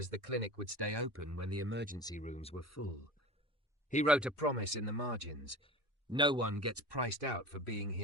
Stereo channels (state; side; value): normal; both; correlation 0.35